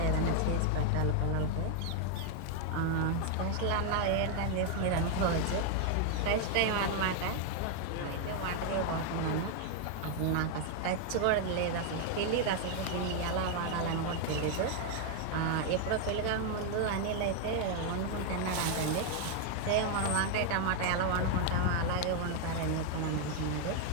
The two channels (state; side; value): different; both; correlation 0.00